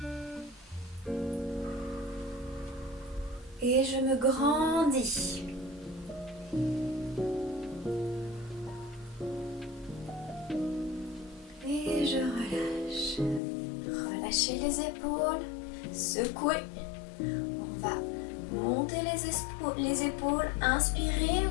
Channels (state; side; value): drops out; right; at 13.4 s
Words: Et je me grandis. Et je relâche. Relâchez les épaules, secouez. On va monter les épaules, inspirez,